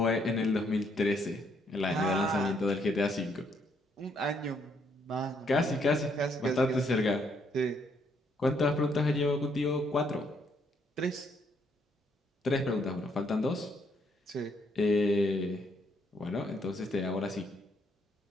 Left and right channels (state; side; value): normal; both; correlation 0.72